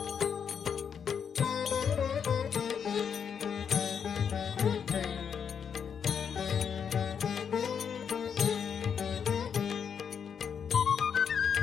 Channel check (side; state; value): right; quieter; 7.2 dB